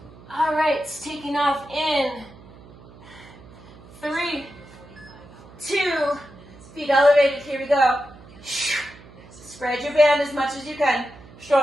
All right, taking off in 3, 2, feet elevated, here we go. Spread your band as much as you can.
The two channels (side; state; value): right; noise; hum, 21 dB below the sound